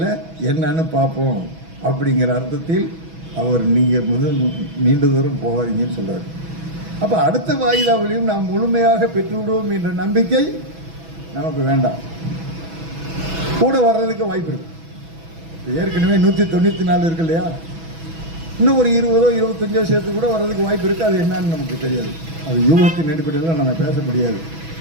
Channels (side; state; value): left; late; 6.1 ms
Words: என்னன்னு பார்ப்போம் அப்படிங்கிற அர்த்தத்தில் அவர் நீங்கள் நீண்ட தூரம் போகாதீங்கன்னு சொல்றாரு. அப்போ அடுத்த வாயிதாவிலையும் நாம் முழுமையாக பெற்றுவிடுவோம் என்ற நம்பிக்கை நமக்கு வேண்டாம். கூட வர்றதுக்கு வாய்ப்பு இருக்கு. ஏற்கனவே 194 இருக்கு இல்லையா, இன்னும் ஒரு 20 25 சேர்த்து கூட வர்றதுக்கு வாய்ப்பு இருக்கு. அது என்னன்னு நமக்கு தெரியாது. அது யூகத்தின் அடிப்படையில் நம்ம பேச முடியாது.